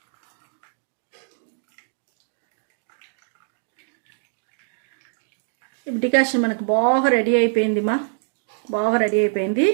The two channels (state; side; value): silent; left; digital silence